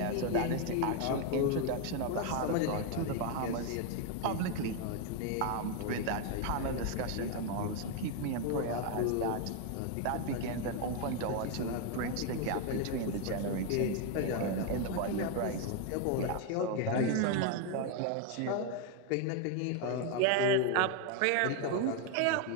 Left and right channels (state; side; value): different; both; correlation 0.01